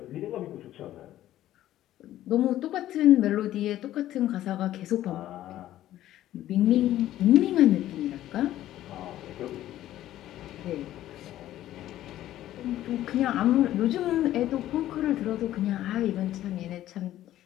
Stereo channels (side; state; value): right; quieter; 13.4 dB